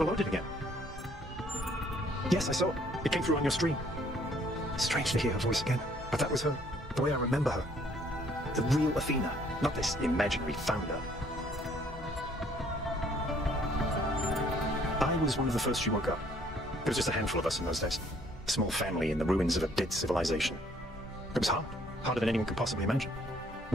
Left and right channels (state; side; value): normal; both; correlation 0.63